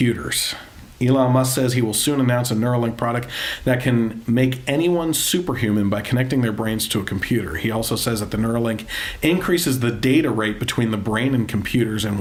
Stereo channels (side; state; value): both; identical; correlation 1.00